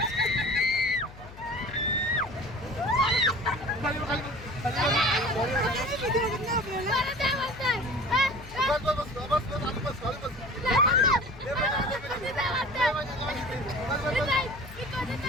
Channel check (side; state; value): left; noise; hum, 18 dB below the sound